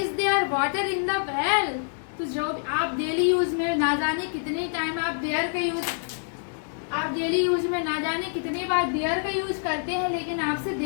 there water in the well। तो जो आप daily use में ना जाने कितने time आप there का use, आप डेली यूज में ना जाने कितनी बार देयर का यूज करते हैं, लेकिन आपसे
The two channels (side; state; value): right; silent; digital silence